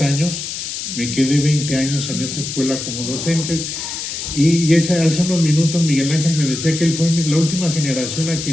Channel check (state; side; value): noise; left; hiss, 6 dB below the sound